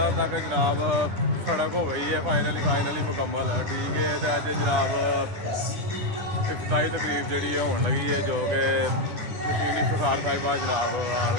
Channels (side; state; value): left; late; 9.9 ms